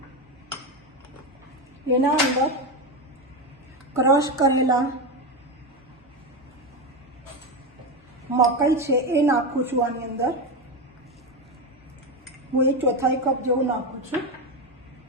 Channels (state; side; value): normal; both; correlation 0.15